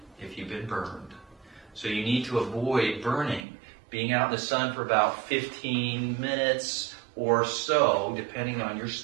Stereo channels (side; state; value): left; drops out; at 3.5 s